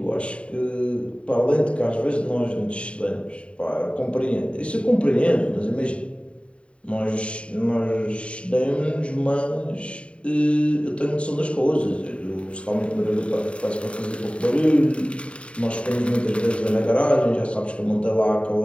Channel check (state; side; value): late; right; 0.060 ms